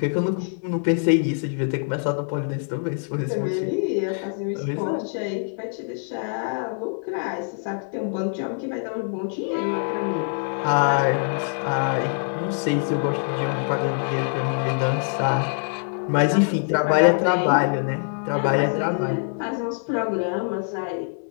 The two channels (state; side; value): silent; right; 60 dB below the other